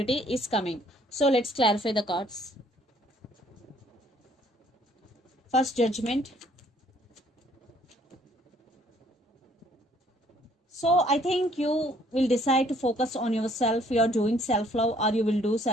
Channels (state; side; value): normal; both; correlation 0.62